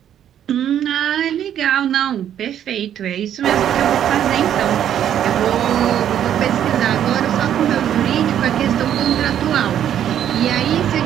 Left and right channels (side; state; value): left; quieter; 10.2 dB